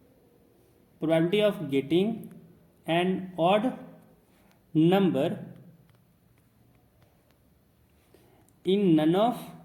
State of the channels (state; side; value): identical; both; correlation 1.00